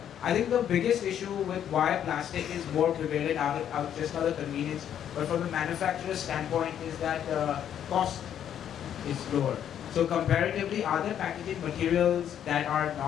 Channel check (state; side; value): quieter; right; 9.7 dB